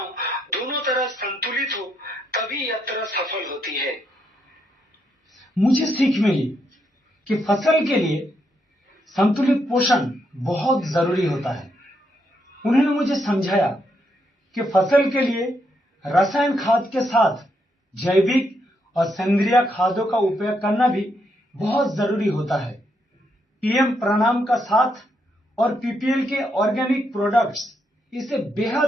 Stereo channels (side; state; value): both; normal; correlation 0.78